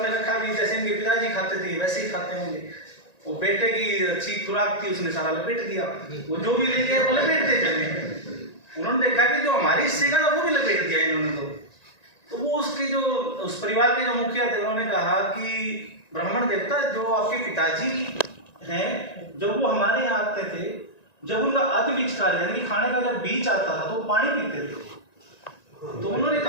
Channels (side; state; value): right; late; 1.9 ms